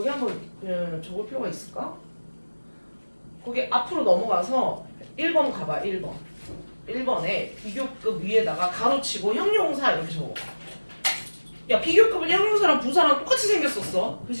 한번 그냥 적을 필요가 있을까? 거기 앞으로 넘어가서 1번 가봐. 1번. 1번에 비교급 위에다가 가로치고 형용사 이렇게 적어. 야 비교급은 형용사랑 부사랑 똑같이 생겼었어.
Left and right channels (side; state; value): both; inverted; correlation -1.00